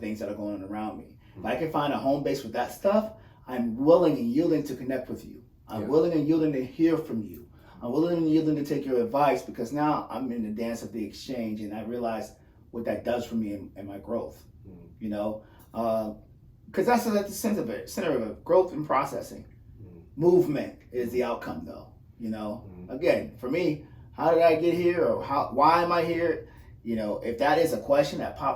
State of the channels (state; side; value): identical; both; correlation 1.00